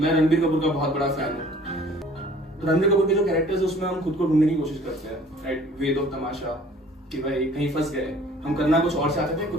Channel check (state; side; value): normal; both; correlation 0.52